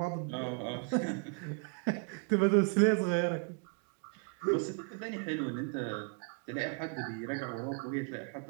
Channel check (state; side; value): quieter; left; 37.7 dB